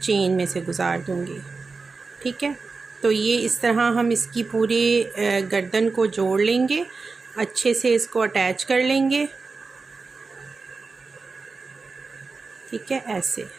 में से गुजार दूँगी। ठीक है, तो ये इस तरह हम इसकी पूरी गर्दन को जोड़ लेंगे, अच्छे से इसको अटैच कर लेंगे। ठीक है, ऐसे,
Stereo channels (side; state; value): left; quieter; 4.2 dB